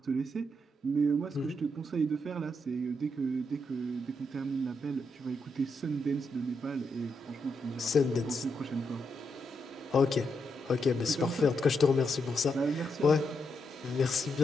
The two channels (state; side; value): normal; both; correlation 0.81